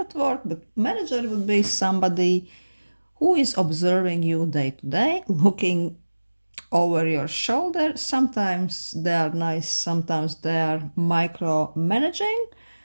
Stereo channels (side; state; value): both; inverted; correlation -1.00